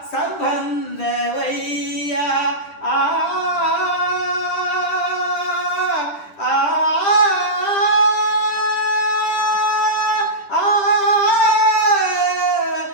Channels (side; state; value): right; late; 10 ms